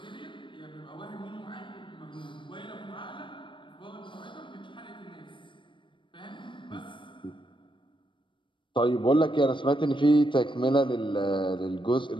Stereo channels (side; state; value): right; late; 0.24 ms